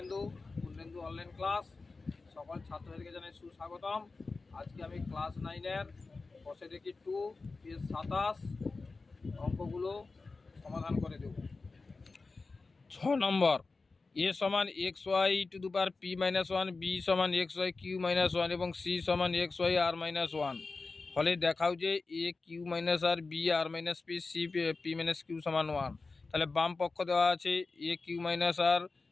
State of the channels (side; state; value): right; quieter; 3.9 dB